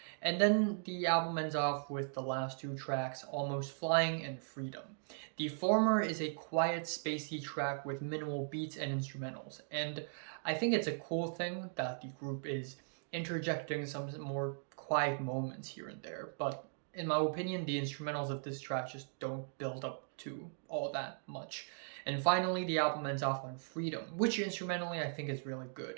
And then the album ends off with the last two tracks, Almost Flying and Freedom. The former is a quiet, spacey track with minimal beats and instrumentals, and I think it's a cool thing that the group is interjecting some more quiet moments here and there, but in my opinion, the instrumentals of this track just don't build up to all that much. And finally, the album ends off on Freedom, which instrumentally I think is really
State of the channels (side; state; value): left; silent; digital silence